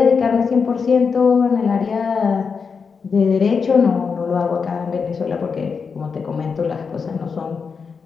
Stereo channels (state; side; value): quieter; right; 5.5 dB